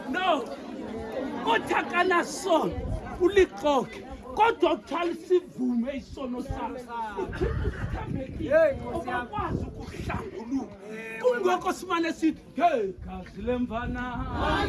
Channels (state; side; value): identical; both; correlation 1.00